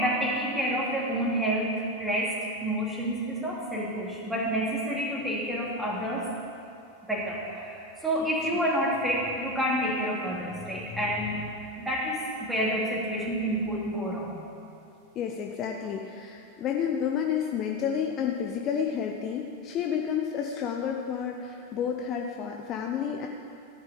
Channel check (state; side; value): normal; both; correlation 0.19